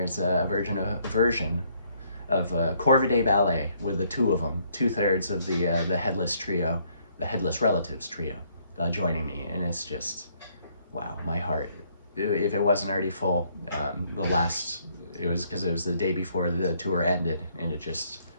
a version of Corvidae Ballet with the 2 of them, 2/3 of the Headless trio, the Headless Relatives trio, joining me. And it's just, wow, my heart, if it wasn't already full, it was because it was the day before the tour ended, and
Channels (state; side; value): inverted; both; correlation -0.67